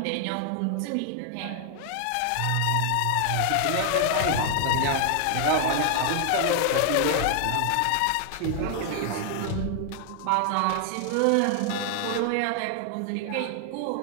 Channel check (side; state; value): both; different; correlation 0.00